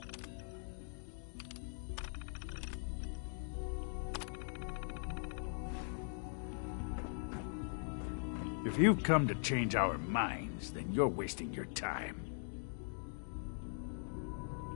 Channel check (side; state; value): right; silent; digital silence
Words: If you've come to change our minds, then you're wasting your time.